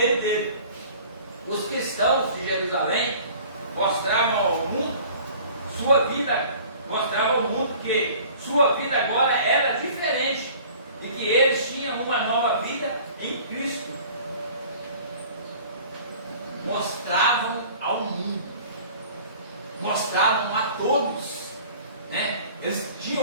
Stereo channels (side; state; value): both; inverted; correlation -0.48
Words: dele. Os cristãos de Jerusalém mostravam ao mundo que sua vida agora era diferente e que eles tinham uma nova vida em Cristo. Mostravam ao mundo, mostravam a todos, né? Eles